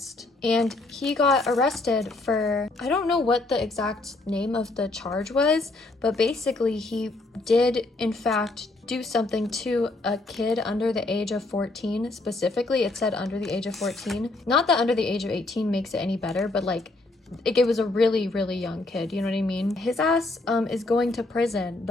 and he got arrested for, I don't know what the exact name of the charge was, but basically he did in fact do something to a kid under the age of 14. Specifically, it said under the age of 14. Not that under the age of 18 makes it any better, but like it was a really, really young kid, you know what I mean? His ass is going to prison.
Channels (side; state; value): right; quieter; 3.1 dB